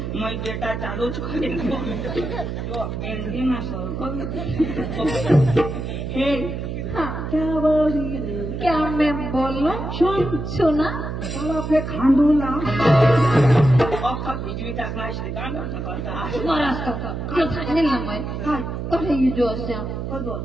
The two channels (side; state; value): right; noise; hum, 5 dB below the sound